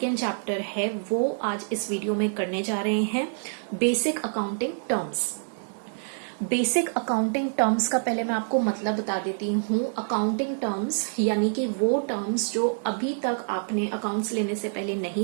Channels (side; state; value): left; silent; 60 dB below the other